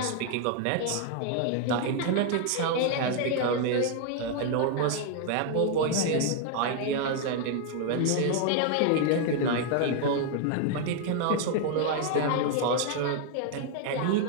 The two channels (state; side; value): different; both; correlation 0.00